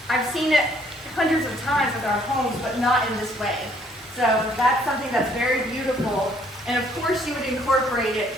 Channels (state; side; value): normal; both; correlation 0.64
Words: I've seen it hundreds of times with our homes, but not in this way. So that's something that's very beautiful. And of course you would incorporate it